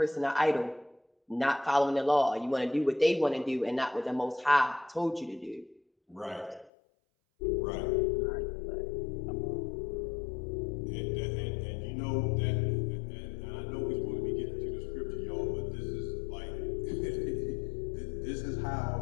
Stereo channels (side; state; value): right; drops out; at 6.7 s